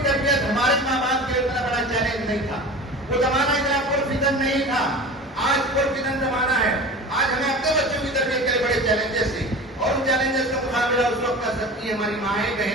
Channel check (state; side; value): normal; both; correlation 0.34